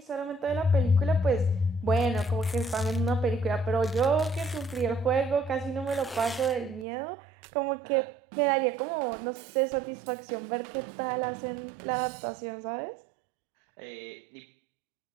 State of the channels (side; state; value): left; drops out; at 6.9 s